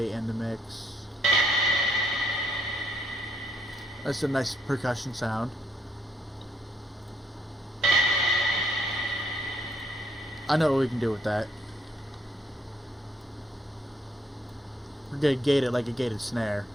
in the mix. That's a nice percussion sound. I know what we can do with that. We're gonna gate it like a gated snare.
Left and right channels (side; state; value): both; normal; correlation 0.71